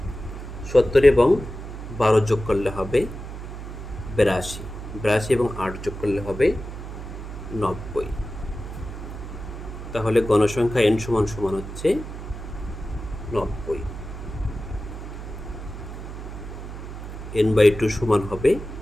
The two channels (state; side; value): noise; right; hum, 9 dB below the sound